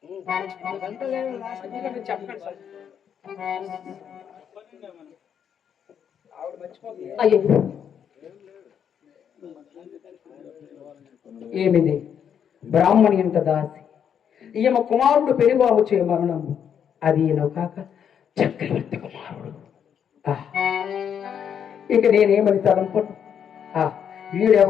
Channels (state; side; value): quieter; right; 8.3 dB